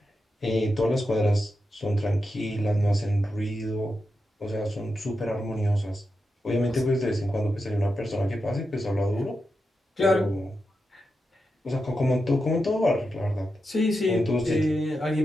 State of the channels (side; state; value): both; normal; correlation 0.88